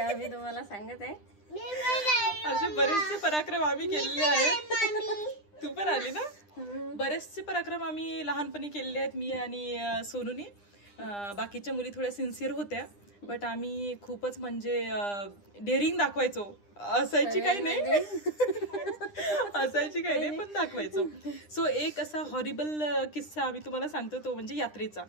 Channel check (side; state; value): right; late; 9.9 ms